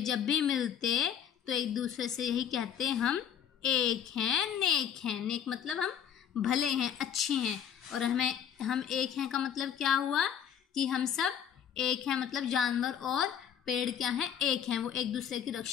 जब भी मिलते तो एक दूसरे से यही कहते, हम एक हैं, नेक हैं। नेक मतलब हम भले हैं, अच्छे हैं। और हम एक हैं का मतलब क्या हुआ? कि हम सब एक हैं, मतलब जानवर और पेड़ क्या हैं? एक हैं। वो एक दूसरे की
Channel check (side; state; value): right; quieter; 8.9 dB